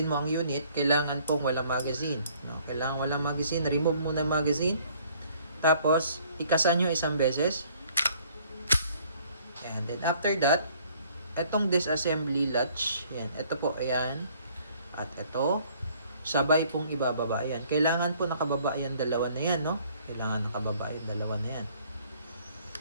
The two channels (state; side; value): inverted; both; correlation -0.60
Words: mo ang unit, kailangan pong walang magazine. Kailangan walang magazine. Remove muna ang magazine. Tapos, ikasan nyo isang beses. And then, after that, itong disassembly latch, yan, ito po, ayan, at ito, sabay pong ibababa, ayan. Kailangan po nakababa yan, dalawa na yan, no? Kailangan nakababa yan, dalawa na yan.